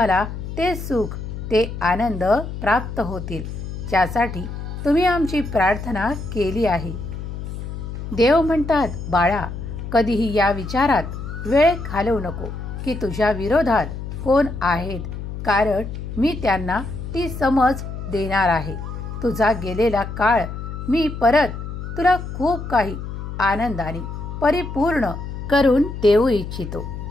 ते सुख, ते आनंद प्राप्त होतील, ज्यासाठी तुम्ही आमची प्रार्थना केली आहे. देव म्हणतात, बाळा, कधीही या विचारात वेळ घालवू नको की तुझ्या विरोधात कोण आहेत, कारण मी त्यांना ती समज देणार आहे. तुझा गेलेला काळ मी परत तुला खूप काही आनंदाने परिपूर्ण करून देऊ इच्छितो.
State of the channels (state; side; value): noise; left; hum, 7 dB below the sound